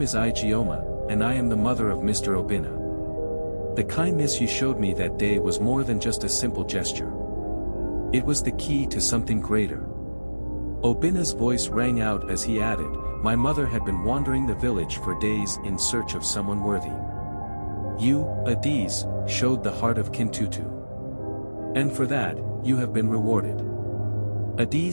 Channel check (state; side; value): inverted; both; correlation -1.00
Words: is Igioma, and I am the mother of Mr. Obina. The kindness you showed me that day was more than just a simple gesture. It was the key to something greater." Obina's voice rang out as he added, "My mother had been wandering the village for days in search of someone worthy. You, Adiz, showed the heart of Kintutu. And for that, you have been rewarded."